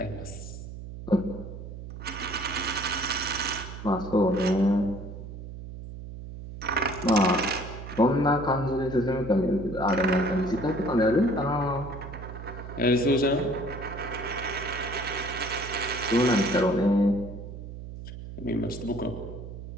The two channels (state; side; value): noise; right; hum, 11 dB below the sound